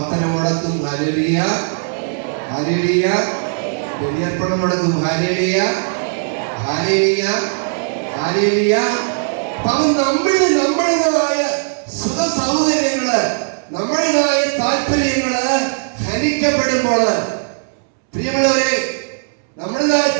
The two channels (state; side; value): silent; left; 68 dB below the other